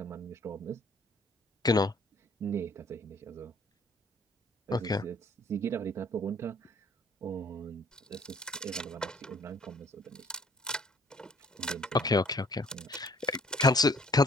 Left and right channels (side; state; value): both; normal; correlation 0.58